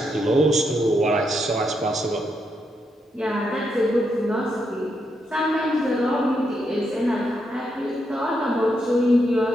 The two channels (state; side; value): normal; both; correlation 0.81